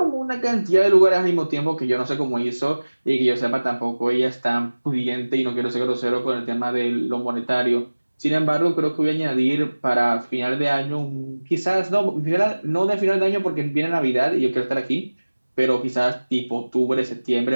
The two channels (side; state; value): both; inverted; correlation -1.00